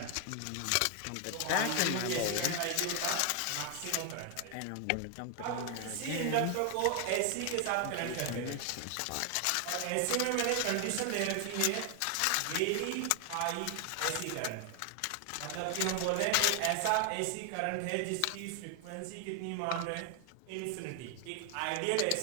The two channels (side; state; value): both; different; correlation 0.00